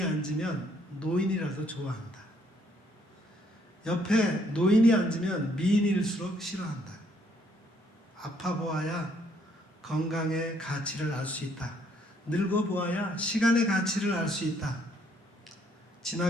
앉으면 노인이라도 좋아한다. 옆에 노인이 앉으면 미인일수록 싫어한다. 아파 보아야 건강의 가치를 알 수 있다. 늙어 보아야 시간의 가치를 알 수 있다.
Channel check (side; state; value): both; normal; correlation 0.68